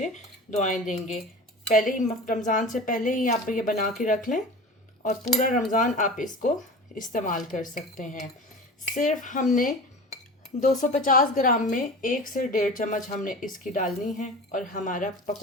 दुआएं देंगे। पहले ही रमज़ान से पहले ही आप ये बना के रख लें और पूरा रमज़ान आप इसको इस्तेमाल कर सकते हैं। सिर्फ हमने 250 ग्राम में 1 से 1.5 चम्मच हमने इसकी डालनी है और हमारा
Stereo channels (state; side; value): normal; both; correlation 0.34